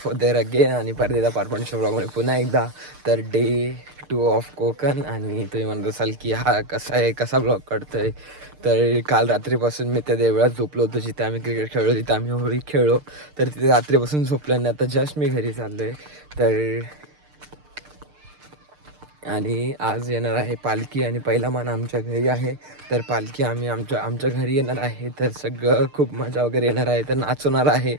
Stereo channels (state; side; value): late; left; 6.7 ms